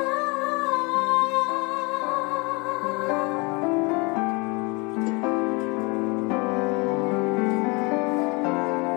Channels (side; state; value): right; quieter; 28.4 dB